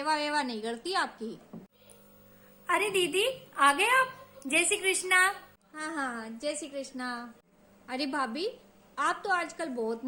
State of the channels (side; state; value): both; identical; correlation 1.00